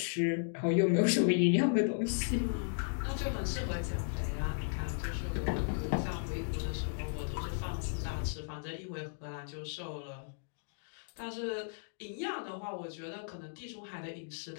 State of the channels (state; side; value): silent; right; digital silence